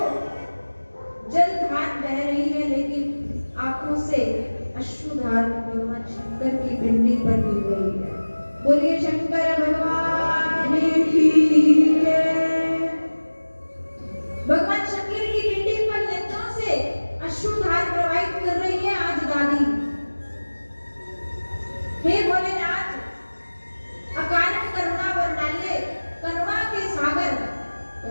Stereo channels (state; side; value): inverted; both; correlation -1.00